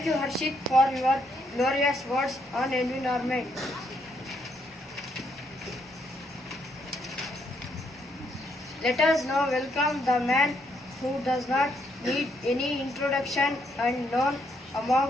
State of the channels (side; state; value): both; normal; correlation 0.74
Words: you, Harshit, for your glorious words on environment. Let us now welcome the man who does not need any introduction and known among